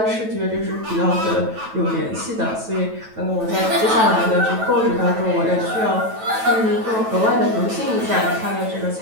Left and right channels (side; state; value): left; late; 9.1 ms